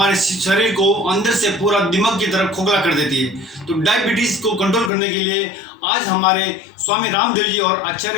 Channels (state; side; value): drops out; right; at 4.9 s